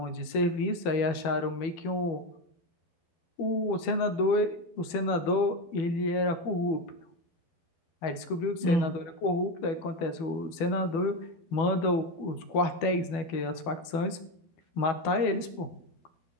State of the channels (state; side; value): late; right; 12 ms